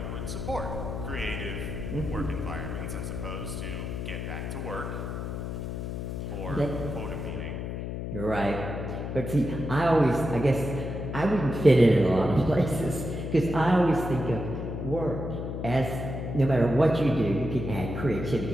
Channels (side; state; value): left; noise; hum, 5 dB below the sound